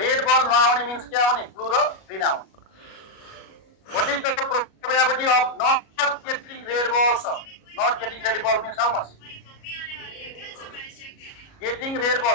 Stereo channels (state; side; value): late; right; 37 ms